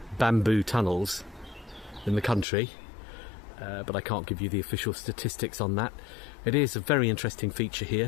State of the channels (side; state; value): right; drops out; at 2.5 s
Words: bamboo tunnels in the country, but I can't give you the official statistics on that. It is a very interesting feature